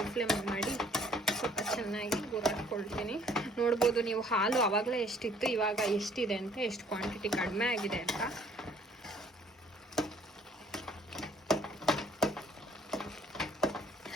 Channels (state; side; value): normal; both; correlation 0.59